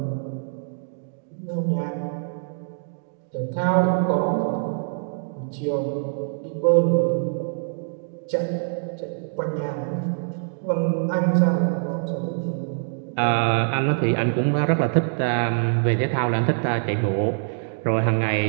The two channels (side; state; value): left; silent; digital silence